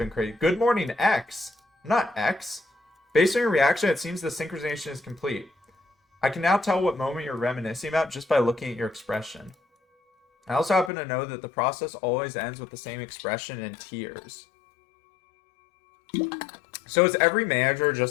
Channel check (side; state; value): right; drops out; at 10.9 s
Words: crazy. Good morning, X. Not X. Based on your reaction, it seems the synchronization is complete. I can now tell what moment you're reminiscing about just by looking at your expression. I also happen to know that the process always ends with the same expression and tears. So is every manager